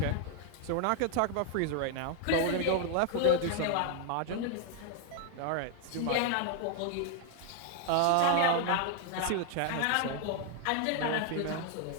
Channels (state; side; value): different; both; correlation 0.00